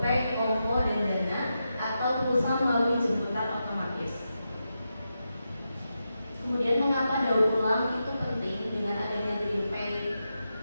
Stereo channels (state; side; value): inverted; both; correlation -0.88